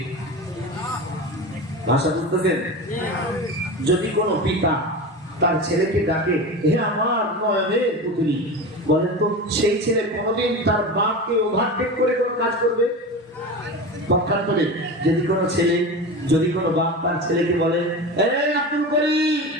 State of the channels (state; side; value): normal; both; correlation 0.27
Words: ভাষা বুঝতেছেন? যদি কোনো পিতা তার ছেলেকে ডাকে, হে আমার নয়নের পুতলি, বলেন তো সেই ছেলে কোনোদিন তার বাপকে ওভারটেক করে কোনো কাজ করবে? পক্ষান্তরে যদি কোনো বাপ তার ছেলেকে বলে, এই আব্দুল করিম,